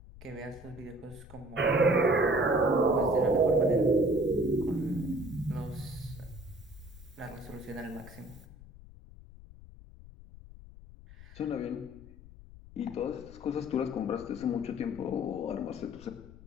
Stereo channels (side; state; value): left; noise; rumble, 18 dB below the sound